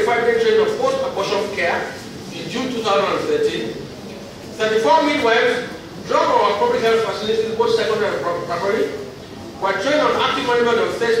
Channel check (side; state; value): both; identical; correlation 1.00